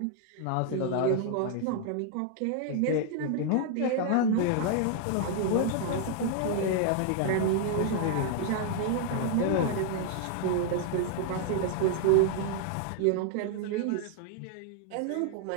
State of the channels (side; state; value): both; different; correlation 0.00